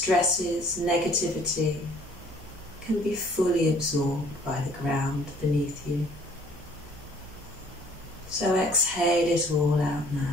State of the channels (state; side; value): noise; right; hum, 17 dB below the sound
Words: negativity can be fully absorbed by the ground beneath you. So exhale it all out